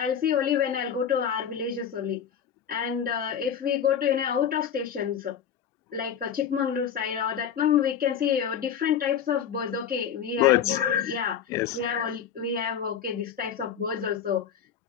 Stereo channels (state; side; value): quieter; right; 8.2 dB